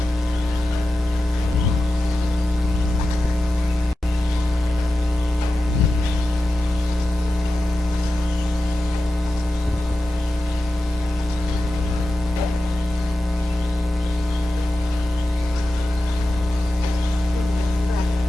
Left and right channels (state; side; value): normal; both; correlation 0.92